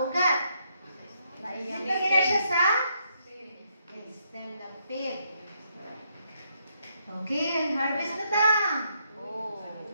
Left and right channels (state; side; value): inverted; both; correlation -0.76